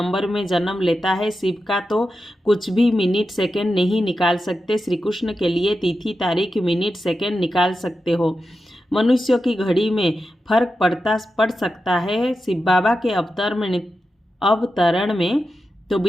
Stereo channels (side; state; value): both; normal; correlation 0.90